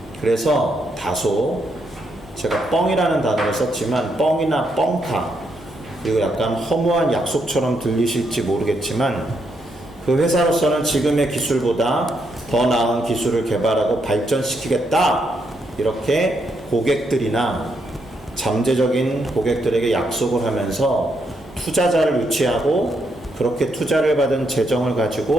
그래서 다소 제가 뻥이라는 단어를 썼지만 뻥이나 뻥카, 그리고 약간 허무한 약속처럼 들리실지 모르겠지만 그 회사로서는 지금의 기술보다 더 나은 기술을 개발하고 발전시키겠다, 이렇게 고객들이나 잠재적인 고객들에게 약속을 하면서 투자자를 유치하고 그렇게 투자를 받은 재정을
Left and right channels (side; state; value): both; normal; correlation 0.78